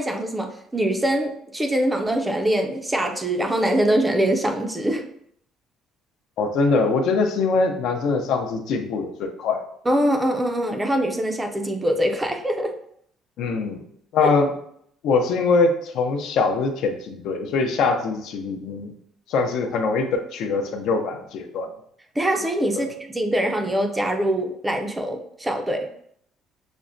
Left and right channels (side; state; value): both; normal; correlation 0.67